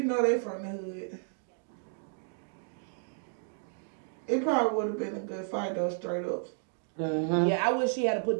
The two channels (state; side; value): silent; left; 56 dB below the other